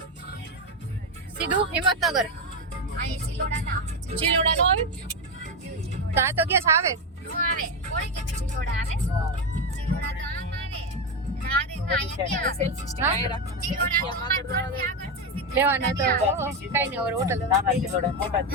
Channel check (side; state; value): both; normal; correlation 0.11